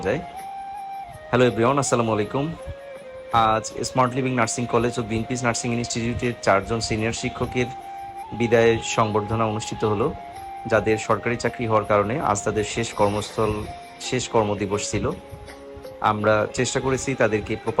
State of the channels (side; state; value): both; identical; correlation 1.00